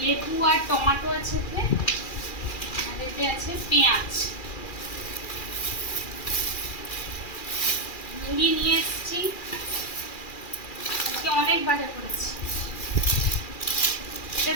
লেবু আর টমেটো আছে এতে, আর এতে আছে পেঁয়াজ। মুড়ি নিয়ে এসেছি, আজকে অনেক বাজার করেছি।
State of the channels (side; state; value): right; late; 2.4 ms